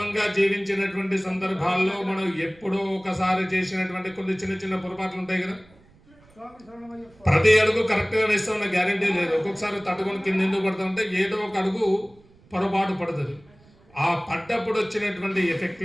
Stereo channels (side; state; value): right; noise; rumble, 28 dB below the sound